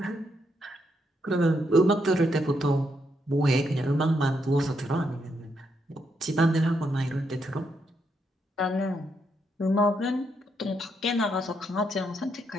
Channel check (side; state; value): both; normal; correlation 0.78